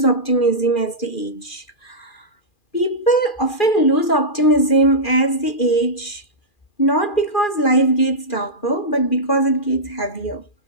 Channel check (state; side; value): late; right; 2.4 ms